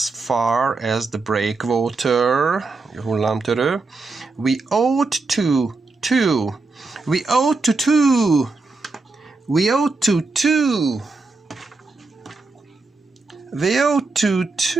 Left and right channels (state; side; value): quieter; left; 3.7 dB